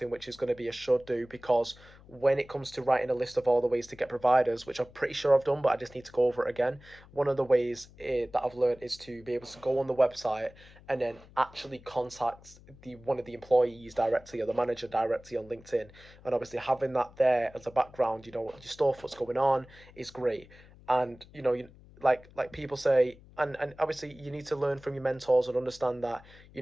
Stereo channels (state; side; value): noise; left; hum, 23 dB below the sound